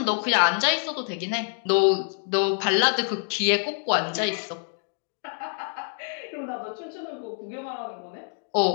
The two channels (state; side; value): silent; right; 61 dB below the other